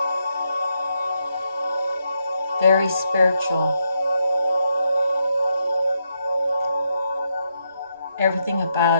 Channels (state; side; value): inverted; both; correlation -0.81